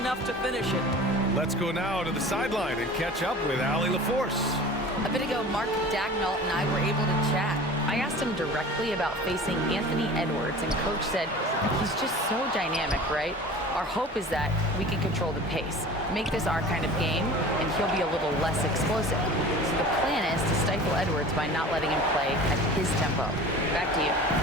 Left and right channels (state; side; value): normal; both; correlation 0.39